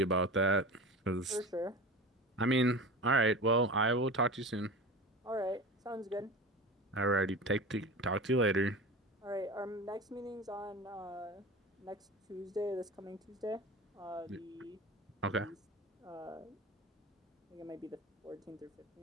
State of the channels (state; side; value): normal; both; correlation 0.31